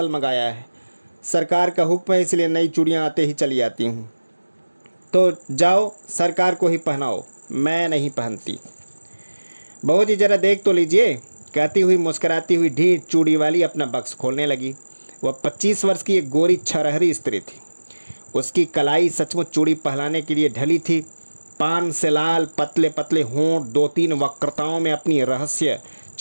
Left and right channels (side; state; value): both; inverted; correlation -1.00